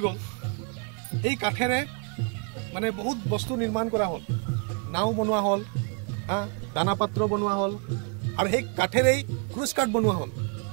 গ'ল এই কাঠেৰে মানে বহুত বস্তু নিৰ্মাণ কৰা হ'ল নাও বনোৱা হ'ল দানা পাত্ৰ বনোৱা হ'ল আৰু সেই কাঠেৰেই ক্ৰুজ কাঠ বনোৱা হ'ল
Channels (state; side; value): quieter; left; 37.7 dB